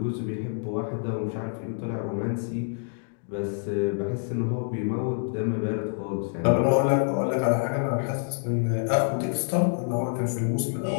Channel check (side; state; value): right; silent; 60 dB below the other